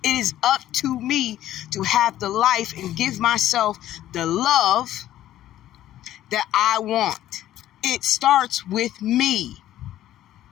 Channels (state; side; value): quieter; right; 13.0 dB